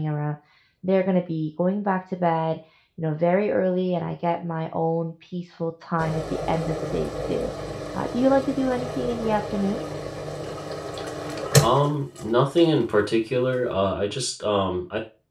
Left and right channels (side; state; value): both; identical; correlation 1.00